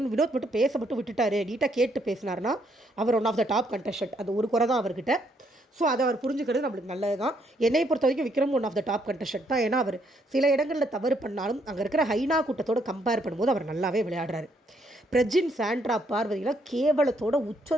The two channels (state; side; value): normal; both; correlation 0.72